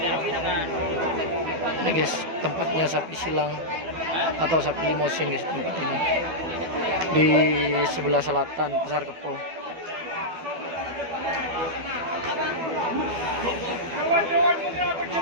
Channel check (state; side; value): late; left; 12 ms